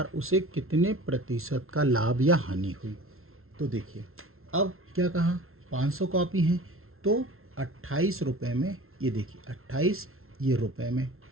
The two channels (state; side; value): late; left; 0.62 ms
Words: उसे कितने प्रतिशत का लाभ या हानि हुई। तो देखिए अब क्या कहा, 500 कॉपी हैं तो 28 रुपये में, ये देखिए 28 ये रुपये में